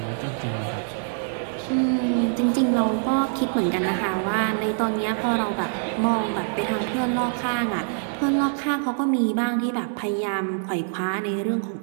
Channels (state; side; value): silent; left; 57 dB below the other